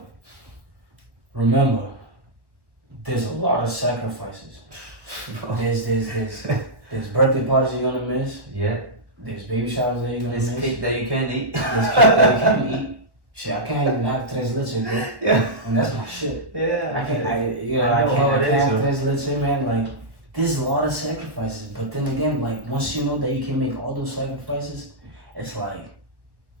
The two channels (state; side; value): late; left; 1.4 ms